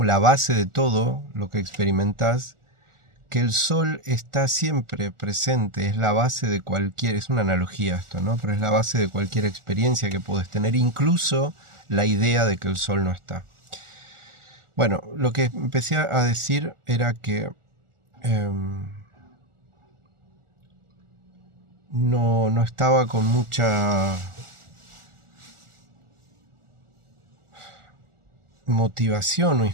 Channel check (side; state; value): left; late; 1.4 ms